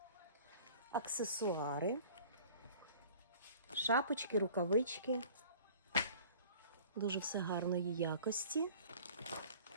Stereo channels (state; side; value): inverted; both; correlation -0.48